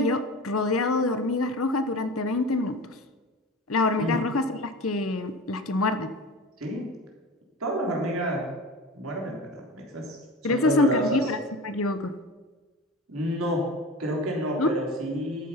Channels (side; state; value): both; normal; correlation 0.32